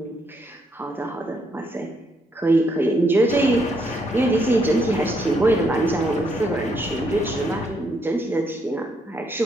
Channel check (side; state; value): both; normal; correlation 0.74